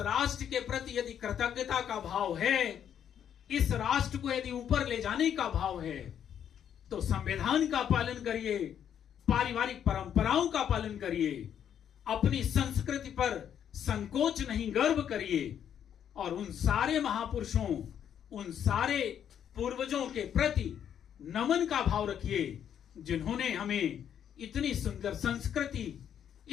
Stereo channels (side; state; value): right; quieter; 9.2 dB